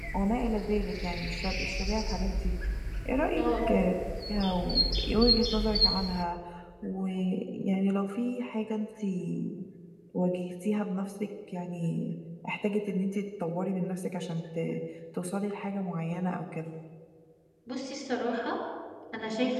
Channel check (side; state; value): both; identical; correlation 1.00